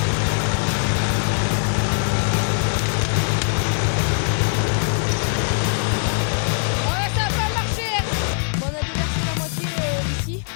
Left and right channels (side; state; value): right; silent; 65 dB below the other